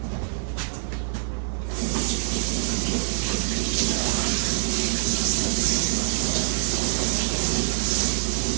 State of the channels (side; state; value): left; silent; digital silence